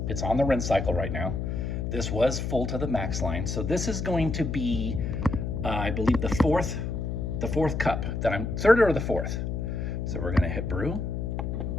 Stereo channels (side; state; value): left; noise; hum, 2 dB below the sound